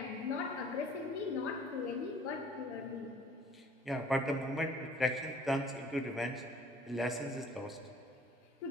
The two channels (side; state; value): both; normal; correlation 0.53